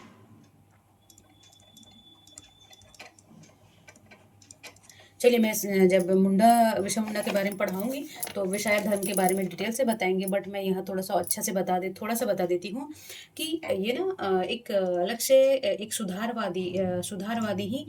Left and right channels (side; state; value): both; identical; correlation 1.00